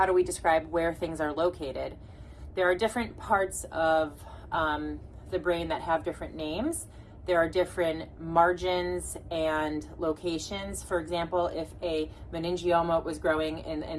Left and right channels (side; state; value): both; identical; correlation 1.00